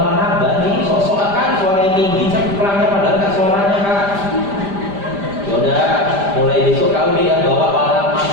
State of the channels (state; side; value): late; left; 5.0 ms